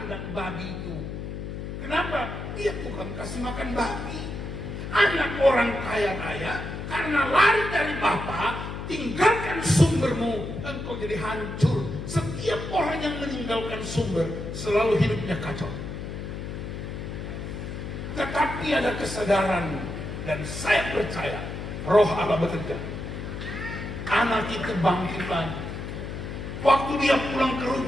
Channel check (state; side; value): noise; left; hum, 7 dB below the sound